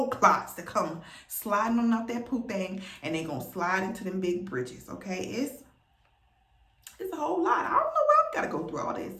clots that come sliding on out that poop thing, and they gonna slide into them big bridges, okay? It's a whole lot. I don't know why I've got to go through all this.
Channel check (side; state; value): both; identical; correlation 1.00